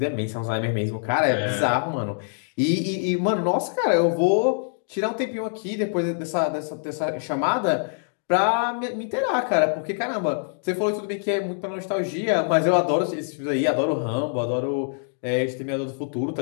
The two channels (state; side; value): silent; right; digital silence